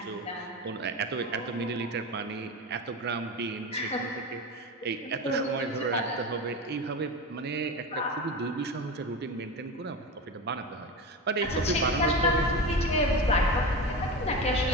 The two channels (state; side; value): normal; both; correlation 0.24